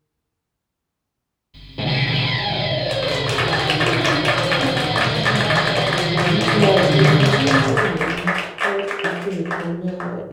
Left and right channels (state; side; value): identical; both; correlation 1.00